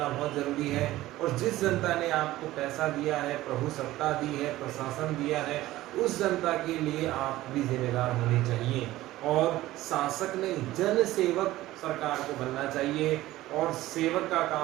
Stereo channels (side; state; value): left; quieter; 16.2 dB